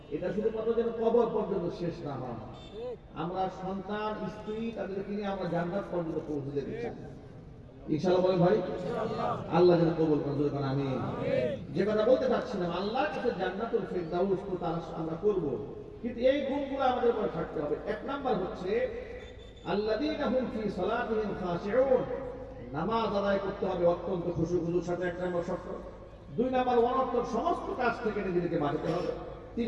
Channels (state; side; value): identical; both; correlation 1.00